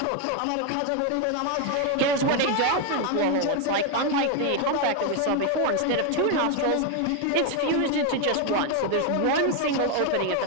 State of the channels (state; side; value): different; both; correlation 0.01